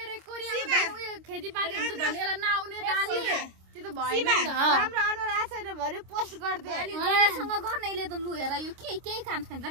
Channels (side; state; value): left; late; 26 ms